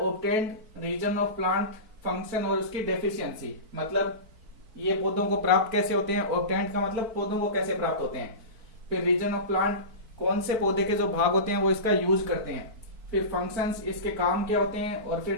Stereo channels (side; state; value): left; late; 4.5 ms